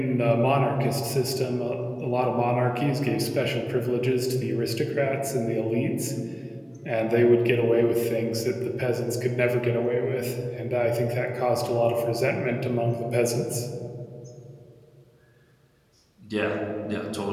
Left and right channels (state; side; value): identical; both; correlation 1.00